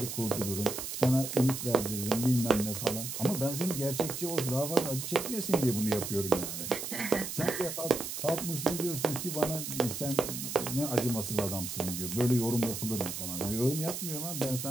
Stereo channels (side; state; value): right; noise; hiss, 6 dB below the sound